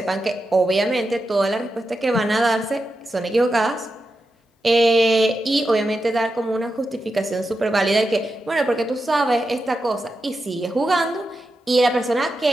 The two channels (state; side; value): normal; both; correlation 0.89